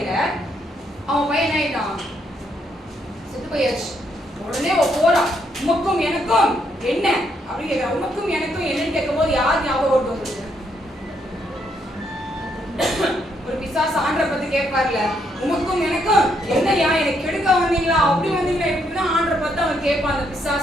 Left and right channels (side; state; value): both; normal; correlation 0.74